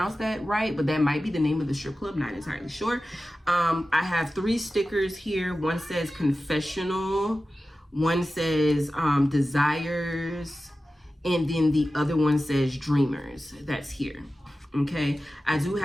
that right, but that might be the name of the strip club, not entirely sure. I have 3 stickers here. One says confessional, one says desires, and then the other one says dreamers. That's here. Okay, I do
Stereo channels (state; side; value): normal; both; correlation 0.94